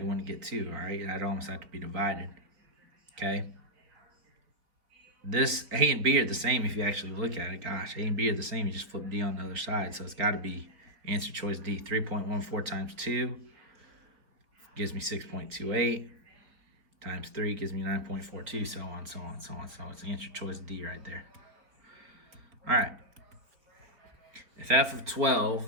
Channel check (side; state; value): left; late; 4.1 ms